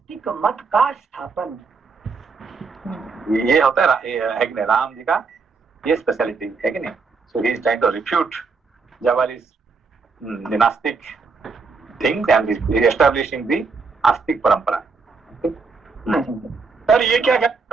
मत का स्थापन। ये होता है कि नहीं, राम जी का ये स्पेशलिटी है कि नहीं? So he is trying to refute Jabali's नास्तिक थिंग्स एंड एस्टैब्लिशिंग द आस्तिक परंपरा। सर ये क्या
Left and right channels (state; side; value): quieter; left; 4.6 dB